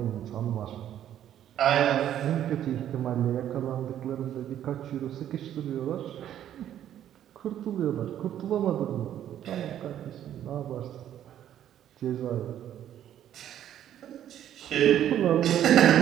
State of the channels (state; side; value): quieter; left; 10.9 dB